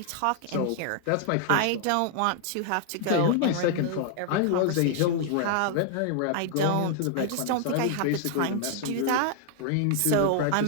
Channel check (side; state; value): both; different; correlation 0.00